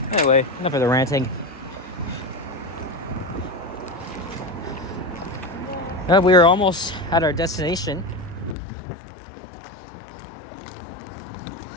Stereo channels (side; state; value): right; drops out; at 8.6 s